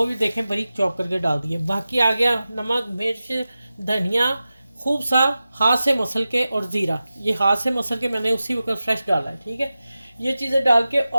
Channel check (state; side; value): inverted; both; correlation -0.94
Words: भी देखें बारीक चॉप करके डाल दिए। बाकी आ गया नमक, मिर्च, धनिया, खूब सा हाथ से मसल के, और ज़ीरा, ये हाथ से मसल के मैंने उसी वक्त फ्रेश डाला है, ठीक है। ये चीज़ें डाल के